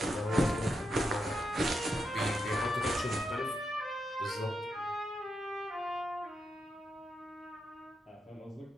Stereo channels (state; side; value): normal; both; correlation 0.84